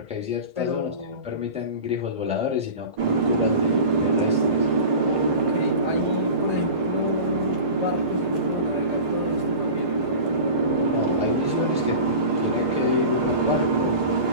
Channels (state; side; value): late; left; 1.5 ms